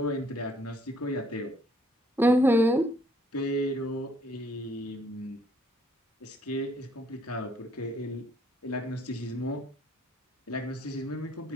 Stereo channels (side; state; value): both; normal; correlation 0.66